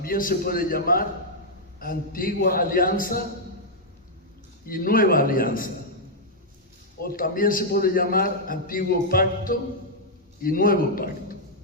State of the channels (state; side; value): normal; both; correlation -0.05